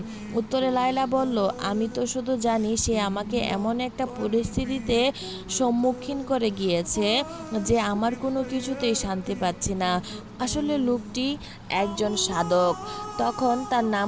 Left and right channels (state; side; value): identical; both; correlation 1.00